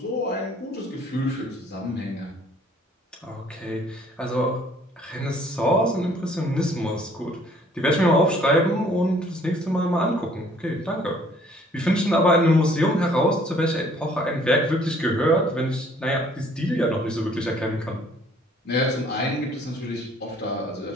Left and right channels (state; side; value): normal; both; correlation 0.59